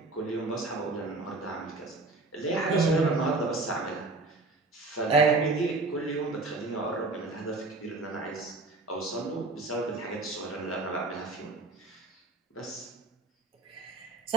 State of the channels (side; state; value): left; quieter; 3.3 dB